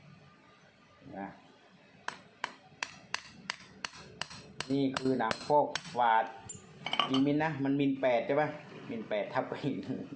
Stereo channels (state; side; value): identical; both; correlation 1.00